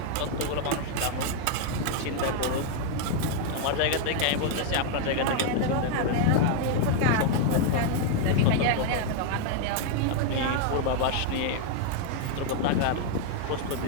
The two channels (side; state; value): both; different; correlation 0.00